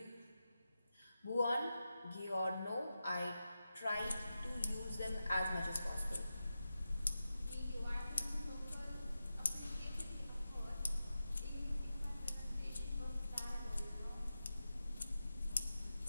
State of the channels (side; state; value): both; inverted; correlation -0.91